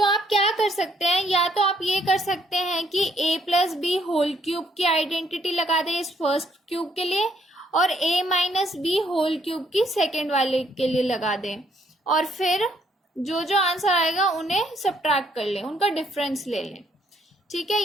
आप क्या कर सकते हैं, या तो आप ये कर सकते हैं कि a plus B whole cube की आइडेंटिटी लगा दें इस फर्स्ट क्यूब के लिए और a minus B whole cube की सेकेंड वाले के लिए लगा दें, और फिर जो जो आंसर आएगा उन्हें सब्ट्रैक्ट कर लें, उनका डिफरेंस ले लें। ठीक है,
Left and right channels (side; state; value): both; normal; correlation 0.69